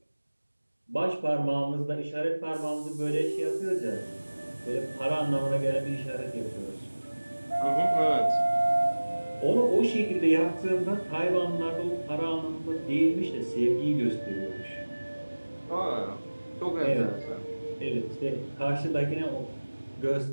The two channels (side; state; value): both; inverted; correlation -1.00